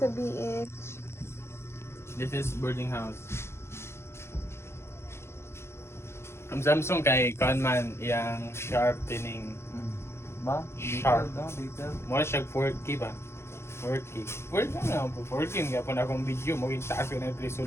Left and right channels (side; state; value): right; late; 0.12 ms